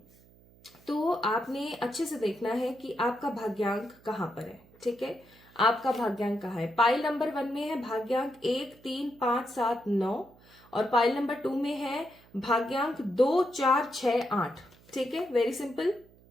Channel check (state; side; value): noise; right; hum, 27 dB below the sound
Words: तो आपने अच्छे से देखना है कि आपका भाग्यांक कहाँ पर है। ठीक है, आपका भाग्यांक कहाँ है। पाइल नंबर 1 में है भाग्यांक 1, 3, 5, 7, 9, और पाइल नंबर 2 में है भाग्यांक 2, 4, 6, 8। ठीक है, वेरी सिंपल।